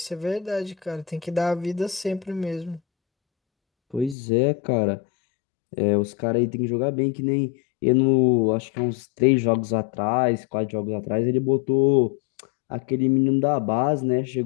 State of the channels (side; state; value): right; drops out; at 4.2 s